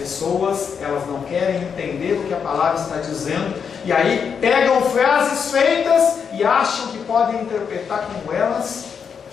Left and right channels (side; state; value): right; quieter; 6.7 dB